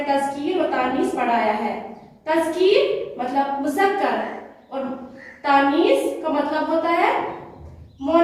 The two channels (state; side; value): identical; both; correlation 1.00